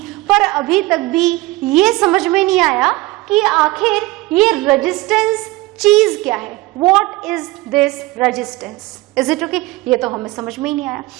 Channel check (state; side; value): quieter; left; 20.4 dB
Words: पर अभी तक भी ये समझ में नहीं आया कि आखिर ये रेजिस्टेंस चीज क्या है। What is this resistance? Is it okay? ये तो हमें समझ में ही नहीं आया।